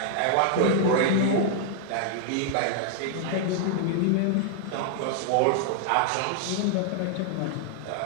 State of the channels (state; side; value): different; both; correlation -0.01